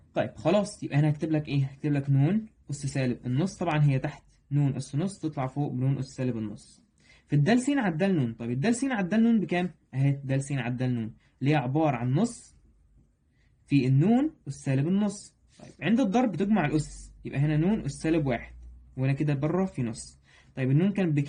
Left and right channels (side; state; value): both; identical; correlation 1.00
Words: طيب خلاص يبقى هنا هكتب لك ايه؟ هكتب لك نون أس سالب النص، طبعا هي تحت نون أس نص تطلع فوق بنون أس سالب النص في الدال س على الدال نون. طيب الدال س على الدال نون بكام؟ اهي دال س على الدال نون اللي هي عبارة عن نص في النون أس سالب النص. طيب عند الضرب تجمع الأس، يبقى هنا نون أس سالب واحد، وهنا كده بره في نص. طيب النون كانت